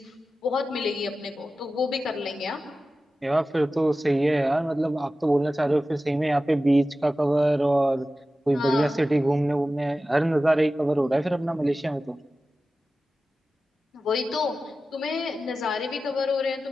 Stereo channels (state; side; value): normal; both; correlation 0.94